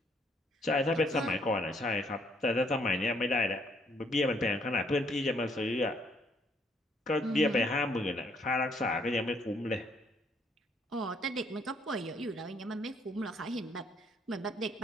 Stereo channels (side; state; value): both; normal; correlation 0.68